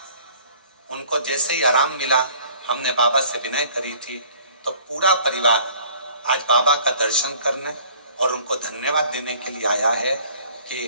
उनको जैसे ही आराम मिला, हमने बाबा से विनय करी थी, तो पूरा परिवार आज बाबा का दर्शन करने और उनको धन्यवाद देने के लिए आया है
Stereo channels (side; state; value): both; inverted; correlation -0.54